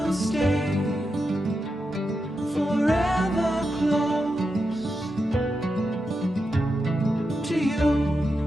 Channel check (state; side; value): normal; both; correlation 0.88